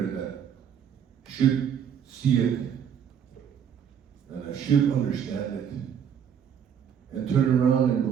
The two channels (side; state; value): left; quieter; 8.2 dB